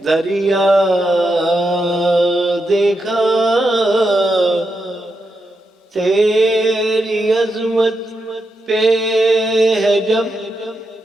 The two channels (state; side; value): normal; both; correlation 0.85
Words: دریا دیکھا، تیری عظمت پہ ہے جب